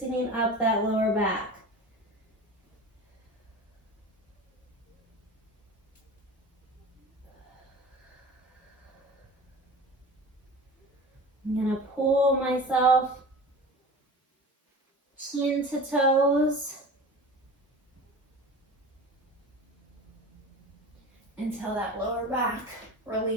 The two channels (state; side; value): normal; both; correlation 0.36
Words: up that lower back. I'm going to pull myself chin to toes until that lower back